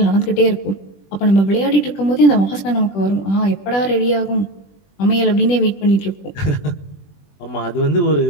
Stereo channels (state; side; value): late; right; 20 ms